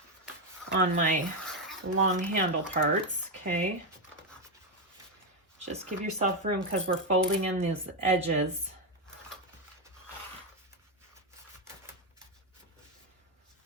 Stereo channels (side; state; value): both; normal; correlation 0.06